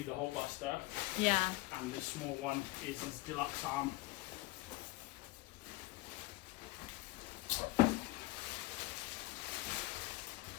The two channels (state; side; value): quieter; right; 20.0 dB